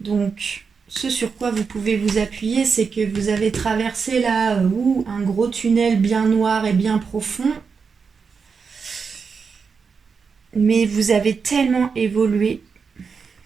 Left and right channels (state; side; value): quieter; left; 5.5 dB